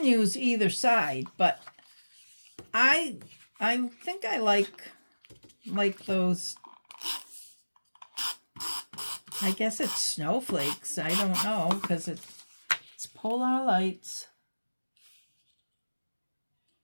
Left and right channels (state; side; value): inverted; both; correlation -1.00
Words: use either side, but I think I like those, I guess it's snowflakes. I don't know, because it's polar lights.